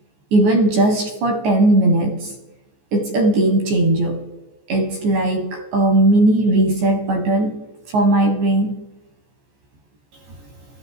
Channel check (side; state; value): left; late; 14 ms